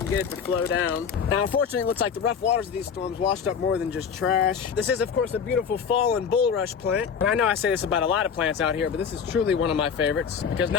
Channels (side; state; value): right; quieter; 6.8 dB